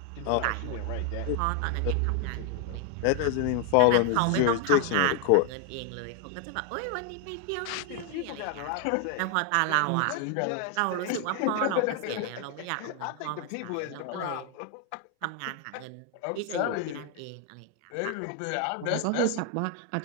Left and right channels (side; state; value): both; different; correlation 0.00